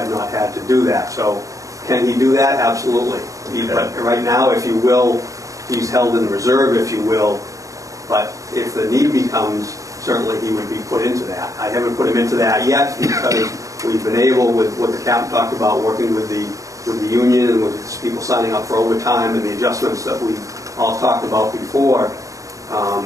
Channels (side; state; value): left; late; 0.16 ms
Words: not had to do that. So can he do that? Absolutely. But right now, if you will, he's held in reserve, if you will. But if the need becomes, certainly he would be put into that. I haven't put him into that yet because we've been able, with what the captain talked about, working with the union and with people signing up for overtime and the adjustments that we've all talked about before,